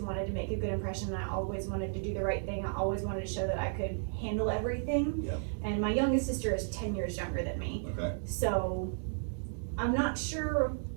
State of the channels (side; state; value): left; silent; digital silence